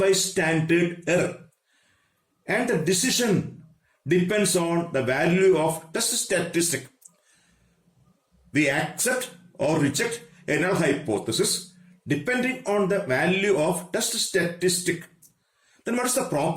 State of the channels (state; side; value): identical; both; correlation 1.00